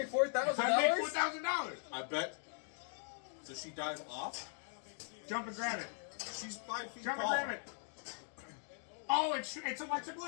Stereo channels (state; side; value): silent; right; 51 dB below the other